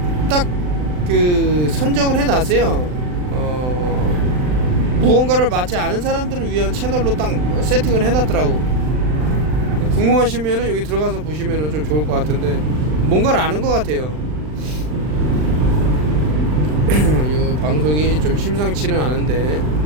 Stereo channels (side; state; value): left; late; 39 ms